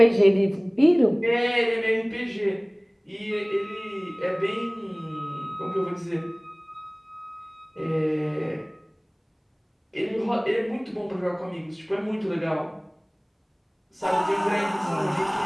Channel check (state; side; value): identical; both; correlation 1.00